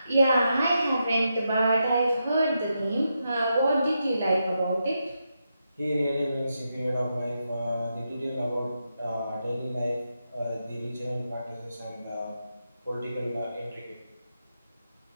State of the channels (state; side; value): inverted; both; correlation -0.85